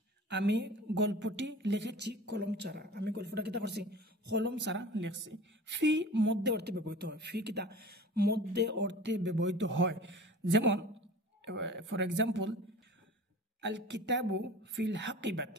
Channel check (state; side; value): normal; both; correlation 0.40